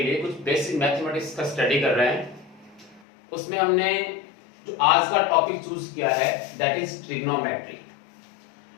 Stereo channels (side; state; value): right; drops out; at 3.0 s